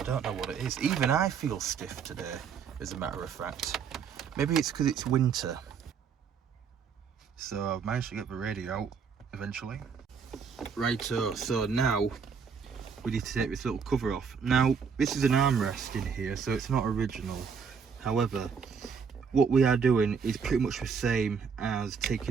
don't know what it is. Even I feel stiff today, as a matter of fact. Maybe it's because it's winter. So I've managed to get the radio out eventually. Righto, so now we need to take this little cover off. Now, this is an armrest in here, so it's not original. However, what we are doing is pretty much the same as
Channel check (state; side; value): quieter; left; 6.2 dB